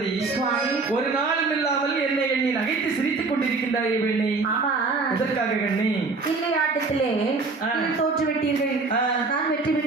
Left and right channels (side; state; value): left; quieter; 3.9 dB